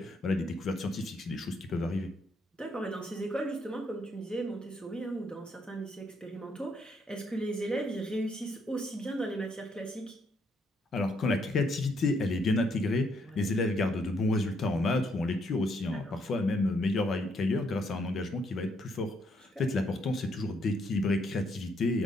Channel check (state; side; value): normal; both; correlation 0.73